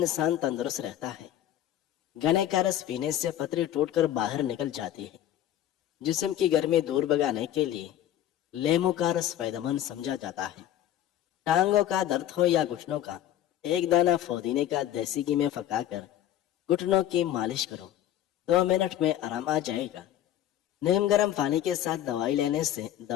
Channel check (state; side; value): quieter; right; 11.9 dB